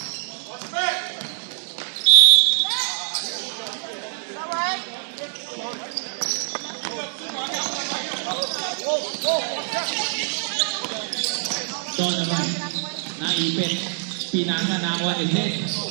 Donovan, naipit. Pinasa na ako ni Zed.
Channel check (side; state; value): left; silent; 62 dB below the other